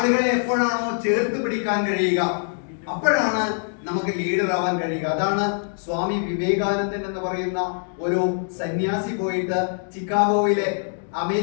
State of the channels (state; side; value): silent; right; digital silence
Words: എപ്പോഴാണോ ചേർത്ത് പിടിക്കാൻ കഴിയുക, അപ്പോഴാണ് നമുക്ക് ലീഡർ ആവാൻ കഴിയുക. അതാണ് സ്വാമി വിവേകാനന്ദൻ എന്ന് പറയുന്ന ഒരു സന്യാസി പോയിട്ട് ചിക്കാഗോയിലെ